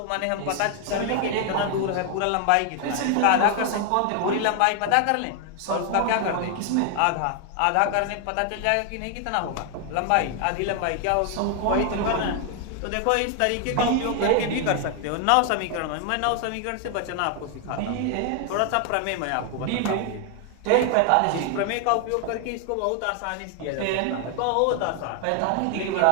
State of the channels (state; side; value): different; both; correlation 0.00